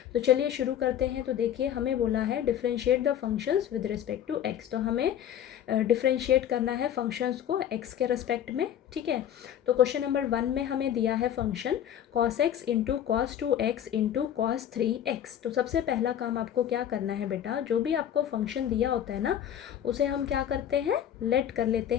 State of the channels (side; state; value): right; quieter; 10.2 dB